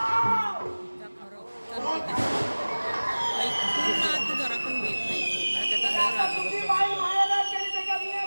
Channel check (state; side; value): inverted; both; correlation -1.00